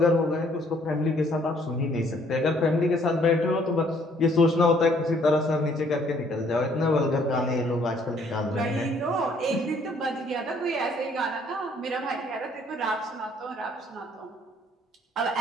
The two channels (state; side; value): normal; both; correlation 0.63